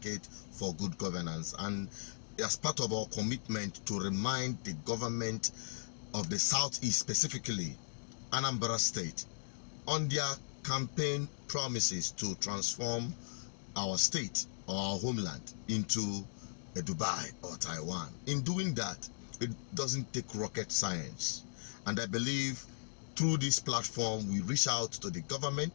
for good governance, and as part of our commitment to remind the government of the Southeast, specifically Anambra State, on their campaign promises to transform our state or our homeland into a Dubai or Taiwan. In doing that, it doesn't take rocket science, and I believe through this platform we reach out to the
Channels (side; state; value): right; silent; digital silence